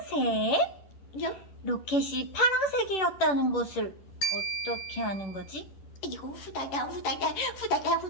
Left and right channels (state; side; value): late; right; 10 ms